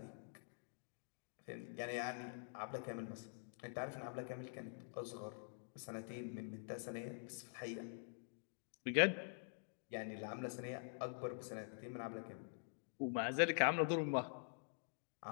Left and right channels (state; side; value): silent; right; digital silence